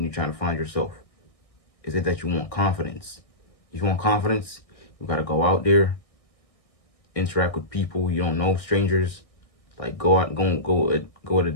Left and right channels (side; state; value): right; late; 1.6 ms